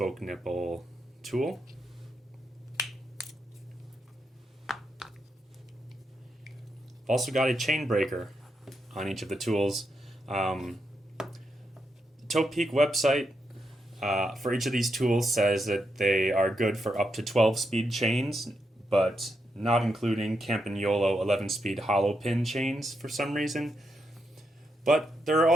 nipple tool. Also got a chain breaker on each of the tools. The Topeak website for each of these tools says that they are good for up to 12-speed chains, but not including Campagnolo 11-speed hollow pin chains for some reason. But there are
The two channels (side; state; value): both; normal; correlation 0.82